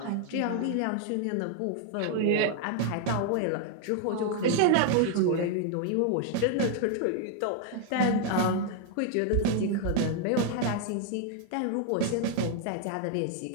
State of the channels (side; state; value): both; different; correlation 0.00